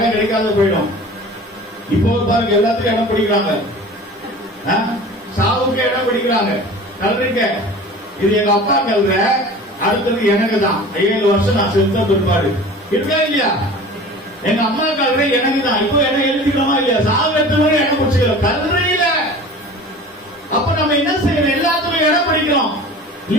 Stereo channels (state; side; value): normal; both; correlation 0.40